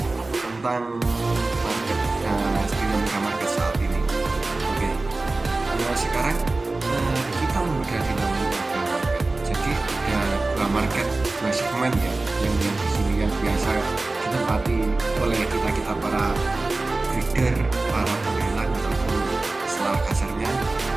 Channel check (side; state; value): left; quieter; 3.2 dB